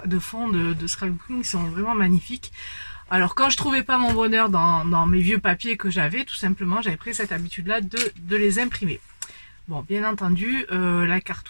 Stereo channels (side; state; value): both; inverted; correlation -1.00